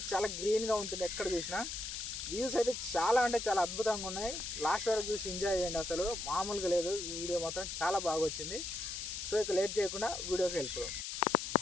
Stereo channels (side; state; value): left; noise; hiss, 5 dB below the sound